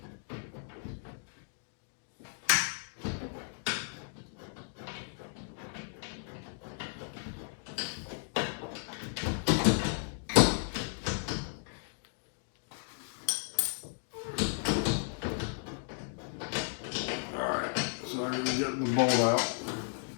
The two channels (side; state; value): right; silent; digital silence